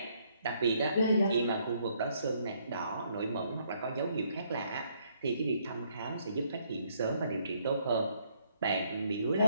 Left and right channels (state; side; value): inverted; both; correlation -0.69